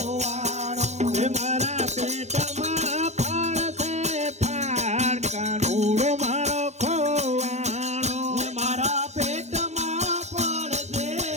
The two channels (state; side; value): late; left; 0.33 ms